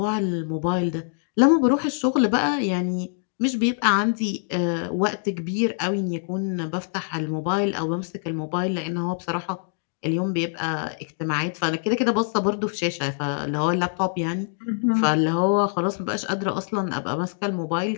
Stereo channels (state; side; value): silent; right; digital silence